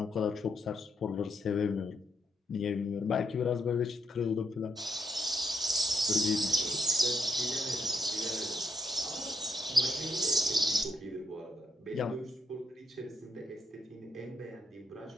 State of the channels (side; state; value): both; normal; correlation 0.77